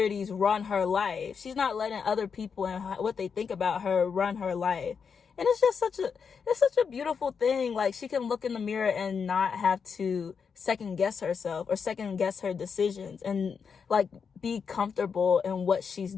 run her life. She's not letting other people and what they think about her run her life. And it's just such a beautiful thing. Like, she can look in the mirror and not have to second guess herself or second guess her decisions, and like be comfortable in what she's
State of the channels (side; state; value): right; quieter; 6.2 dB